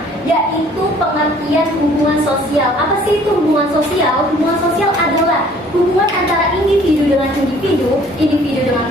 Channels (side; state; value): both; normal; correlation 0.56